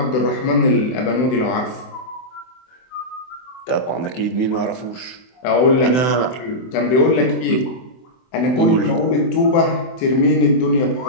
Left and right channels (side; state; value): right; late; 24 ms